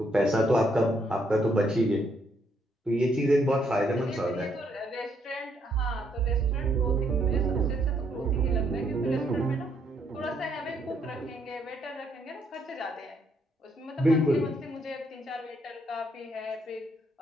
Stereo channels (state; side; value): normal; both; correlation 0.72